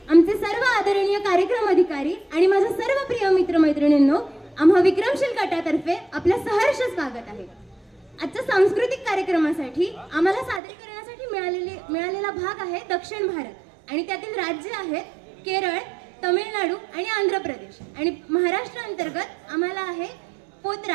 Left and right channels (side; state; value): left; drops out; at 10.6 s